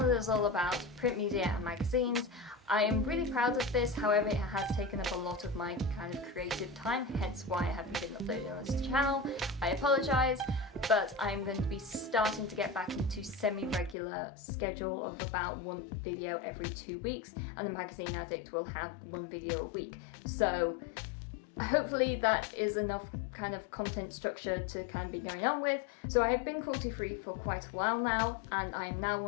is all about print media and magazines. I am really proud of this, however it has taken up a lot of my kind of creative time, hence why I haven't been uploading on this channel. I apologise, but I'm going to be starting to get back into semi-regular schedule of about one video every 2 weeks, and the Magazine Addict will have one video a week. So hopefully that is enough kind of content structure to kind of be going on with. So I have been cruelty-free for quite a while now, and I am now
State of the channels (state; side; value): drops out; right; at 14.0 s